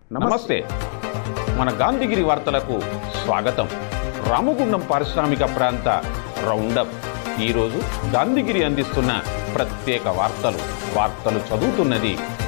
నమస్తే. మన గాంధీగిరి వార్తలకు స్వాగతం. రామగుండం పారిశ్రామిక ప్రాంత రౌండప్. ఈరోజు గాంధీగిరి అందిస్తున్న ప్రత్యేక వార్తలు చదువుతున్నది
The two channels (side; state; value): right; silent; digital silence